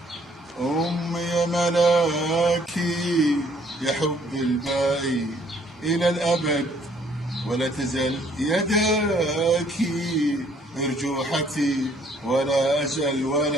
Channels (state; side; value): normal; both; correlation 0.63